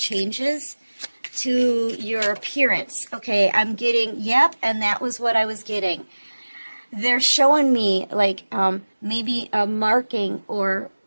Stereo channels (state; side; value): inverted; both; correlation -1.00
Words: to your appearance. Okay, I'm getting, yep, and that was what I was getting. they're showing me like maybe a marking or